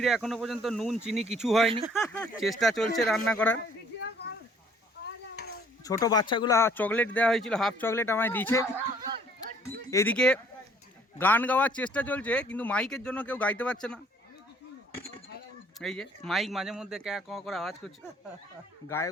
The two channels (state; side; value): normal; both; correlation 0.59